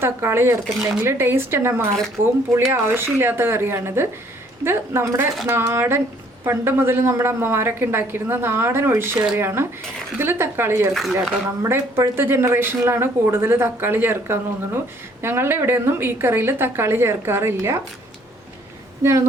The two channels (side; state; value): both; normal; correlation 0.61